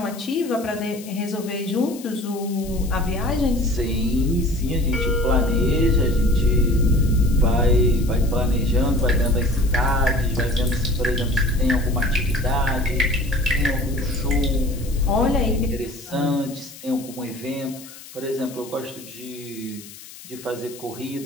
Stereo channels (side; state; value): left; noise; hiss, 17 dB below the sound